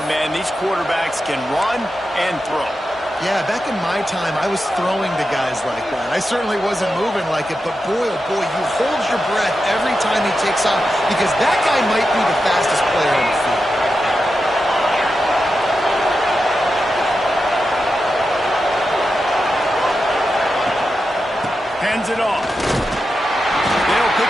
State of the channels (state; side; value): normal; both; correlation 0.89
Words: man. These quarterbacks can run and throw. Yeah, back in my time, I was throwing to guys like that. I certainly wasn't moving like it, but boy, oh boy, you hold your breath every time he takes off because that guy might be the fastest player on the field. Hands it off. They'll